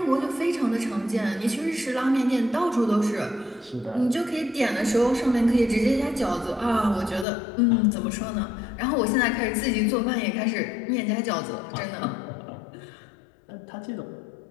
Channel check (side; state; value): right; drops out; at 7.2 s